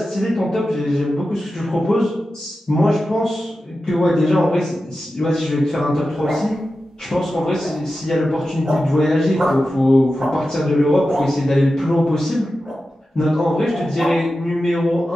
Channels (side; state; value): both; normal; correlation 0.92